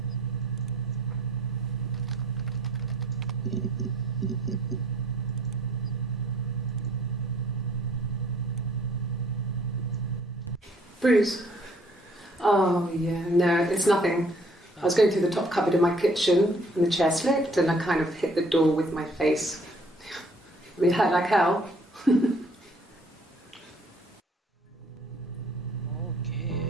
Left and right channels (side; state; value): both; normal; correlation 0.60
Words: Bruce? Oh, yeah, no, it's nothing. I was going through the top cupboard in my kitchen and the chair slipped and I kind of hit the door with my face. I mean, hurt like hell. Ok.